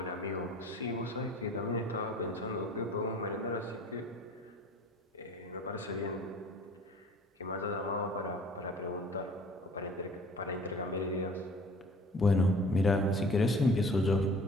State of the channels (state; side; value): normal; both; correlation 0.48